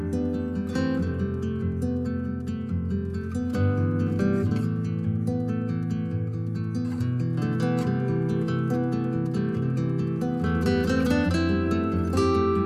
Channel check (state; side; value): identical; both; correlation 1.00